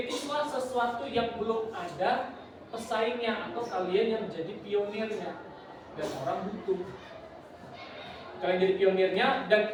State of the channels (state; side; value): identical; both; correlation 1.00